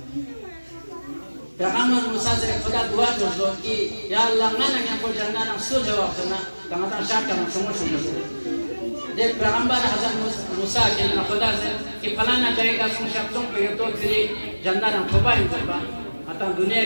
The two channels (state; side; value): inverted; both; correlation -1.00